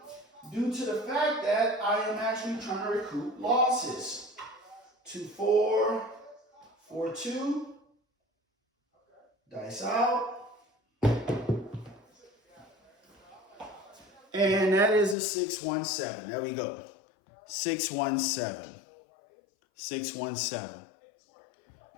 due to the fact that I am actually trying to recoup losses. 2-4, 4-2, dice out. And that is a 6-1-7. There we go. 6-1-7. 6-1-7.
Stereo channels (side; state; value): right; drops out; at 15.2 s